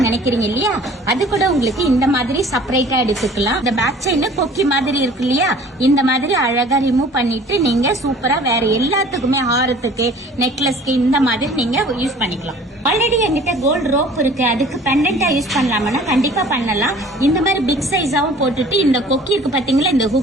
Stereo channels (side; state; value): both; normal; correlation 0.49